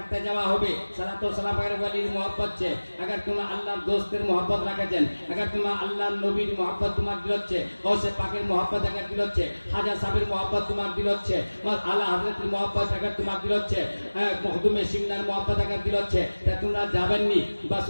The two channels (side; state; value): both; inverted; correlation -1.00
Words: যাওয়া হবে। সালাত ও সালাম এর ওয়ালির मोहब्बत છે। अगर तुम আল্লাহর দোস্তের मोहब्बत রাখেছেন, अगर तुम আল্লাহর নবীর मोहब्बत তোমার দিল হচ্ছে, গৌসে পাকের मोहब्बत अगर দিল হচ্ছে, খাজা সাহেবের मोहब्बत তোমার দিল হচ্ছে, আলা হযরতের मोहब्बत अगर তোমার দিল হচ্ছে, মখদুমে সিমনার मोहब्बत अगर দিল হচ্ছে, তা তোমরা যাবেননি বাস